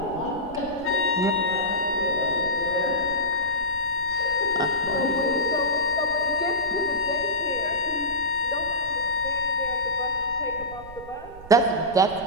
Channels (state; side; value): noise; right; rumble, 17 dB below the sound